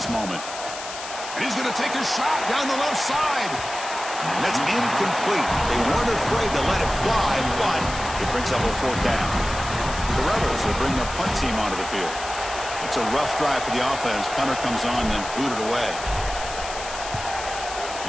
moment. And he's going to take a shot down the left side. And that's incomplete. They weren't afraid to let it fly, but it brings up a 4th down. The Rebels will bring their punt team onto the field. It's a rough drive for the offense. Punter comes on and booted away.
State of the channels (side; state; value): left; noise; hiss, 10 dB below the sound